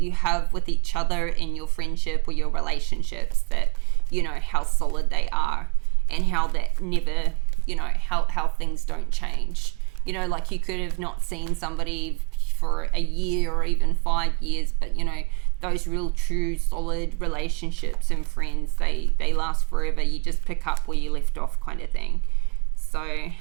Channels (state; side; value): quieter; left; 32.2 dB